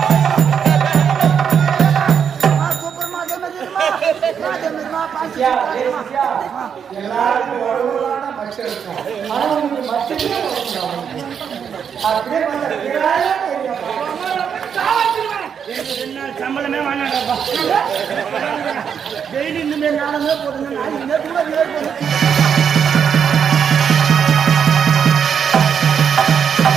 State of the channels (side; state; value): left; quieter; 7.5 dB